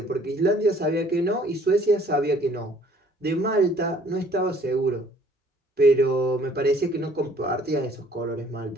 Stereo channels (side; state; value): both; normal; correlation 0.58